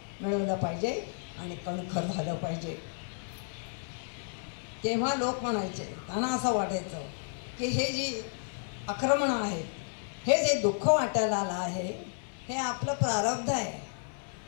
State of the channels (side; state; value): right; silent; 56 dB below the other